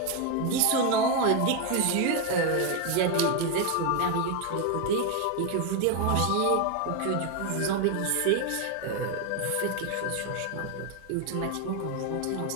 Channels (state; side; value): different; both; correlation 0.01